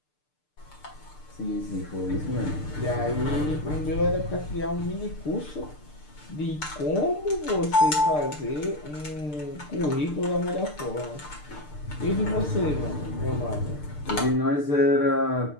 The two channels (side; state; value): right; late; 6.7 ms